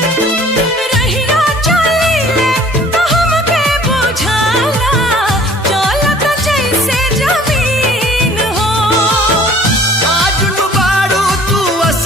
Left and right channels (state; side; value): normal; both; correlation 0.52